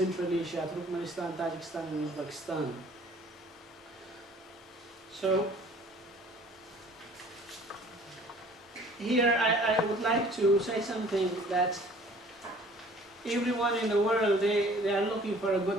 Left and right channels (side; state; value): both; normal; correlation 0.52